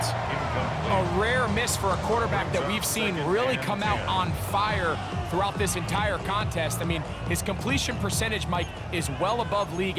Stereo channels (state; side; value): identical; both; correlation 1.00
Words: A rare miss for a quarterback that we've seen really come out on fire throughout this entire contest. I mean, his completion percentage, Mike, is well above league